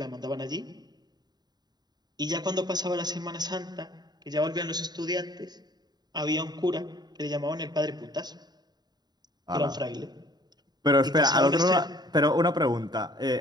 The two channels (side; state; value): left; late; 0.20 ms